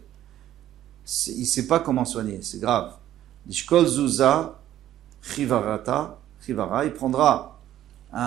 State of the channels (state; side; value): quieter; left; 12.5 dB